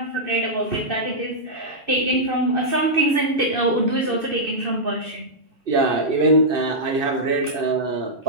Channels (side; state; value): left; late; 2.6 ms